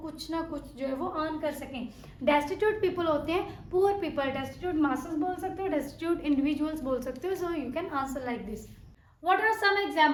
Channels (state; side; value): identical; both; correlation 1.00